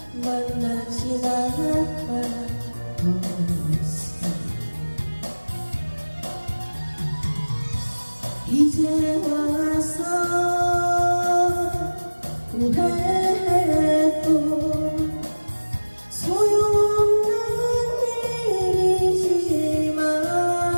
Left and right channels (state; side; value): inverted; both; correlation -1.00